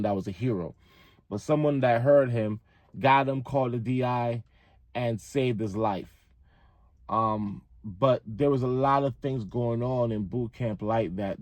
that was a hero. But someone that heard him got him, called the DI, and saved his life. But there was a lot of things going on in boot camp like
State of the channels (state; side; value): identical; both; correlation 1.00